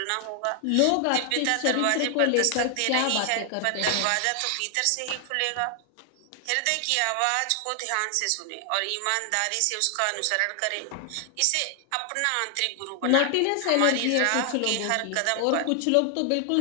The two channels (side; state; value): both; different; correlation 0.00